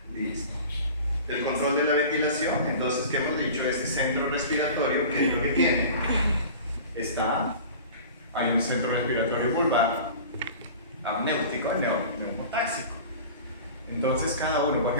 listo. El control de la ventilación. Entonces, ¿qué hemos dicho? Este centro respiratorio, ¿qué es lo que tiene? Hay un centro respiratorio vulvar, amnéutico y neumotáxico. Entonces cada uno, por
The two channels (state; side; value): inverted; both; correlation -0.39